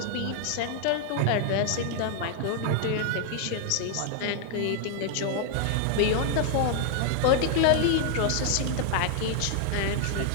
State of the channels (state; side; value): different; both; correlation 0.00